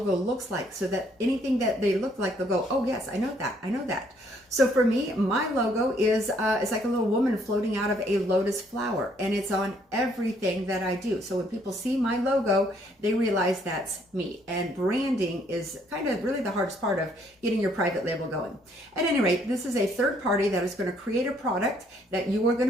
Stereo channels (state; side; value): normal; both; correlation 0.66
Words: looks like so that anything that they look like, they'll go, oh yes, I know that, I know that. So for me, my logo is it's like a little woman floating out of a lotus flower, and it's on everything that I do. So when people see my logo, they realize that's me. And branding is kind of really the hardest part of getting your private label going. At any rate, this is a third party that is going to create a product that you are going